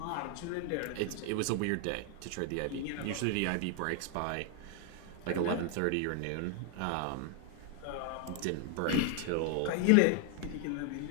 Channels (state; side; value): different; both; correlation 0.00